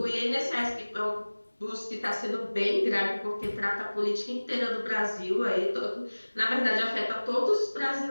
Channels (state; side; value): inverted; both; correlation -1.00